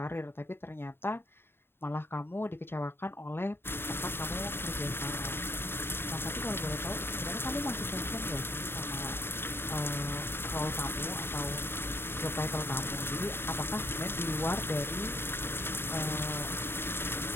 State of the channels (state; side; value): late; right; 0.11 ms